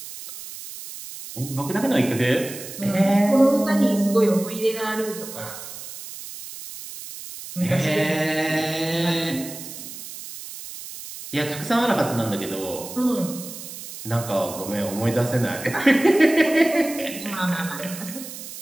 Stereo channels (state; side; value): noise; right; hiss, 12 dB below the sound